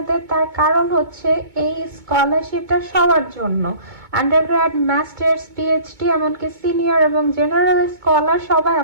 তার কারণ হচ্ছে এই স্কলারশিপটা সবার জন্য, আন্ডারগ্র্যাড, মাস্টার্স, পিএইচডি, এমনকি সিনিয়র এবং জেনারেল স্কলার সবাই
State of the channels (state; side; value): late; left; 2.2 ms